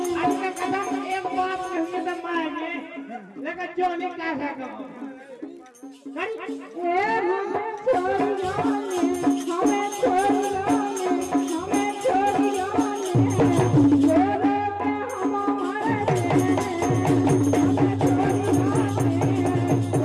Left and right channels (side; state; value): both; identical; correlation 1.00